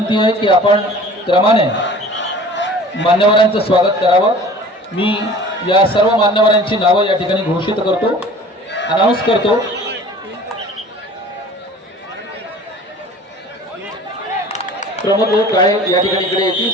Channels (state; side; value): normal; both; correlation 0.45